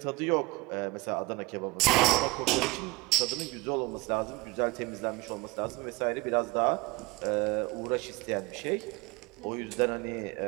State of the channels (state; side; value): quieter; left; 22.6 dB